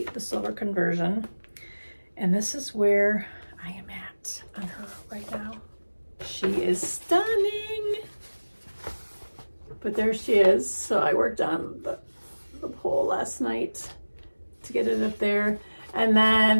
silver conversion. And this is where I am at on her right now. She is stunning. But there she is. So I worked on the pole last night to get it up there. And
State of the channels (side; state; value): both; inverted; correlation -1.00